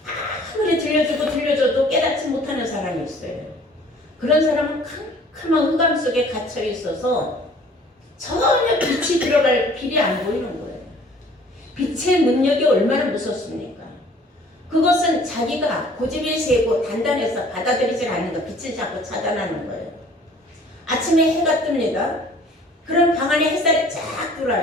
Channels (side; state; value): both; normal; correlation 0.53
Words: 아무리 들려줘도 깨닫지 못하는 사람이 있어요. 그런 사람은 캄캄한 흑암 속에 갇혀 있어서 전혀 빛이 들어갈 길이 안 보이는 거예요. 빛의 능력이 얼마나 무섭습니까? 그것은 자기가 고집이 세고 단단해서 받아들이지 않는 거, 빛을 자꾸 차단하는 거예요. 아침에 해가 뜹니다. 그럼 방 안에 햇살이 쫙